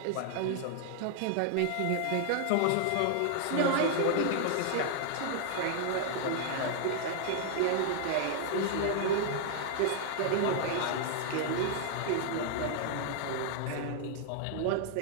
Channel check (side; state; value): both; different; correlation 0.00